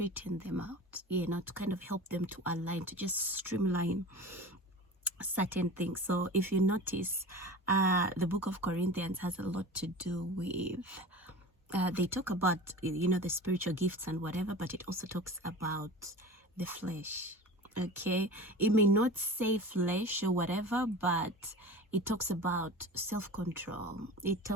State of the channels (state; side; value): normal; both; correlation 0.34